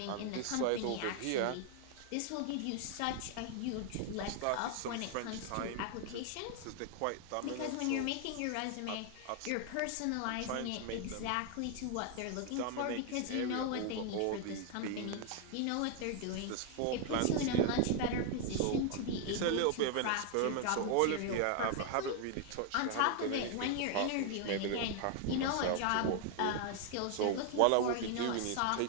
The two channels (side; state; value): both; different; correlation 0.00